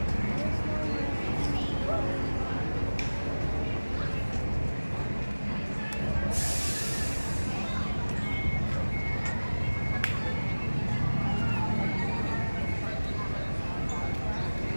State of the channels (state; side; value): inverted; both; correlation -1.00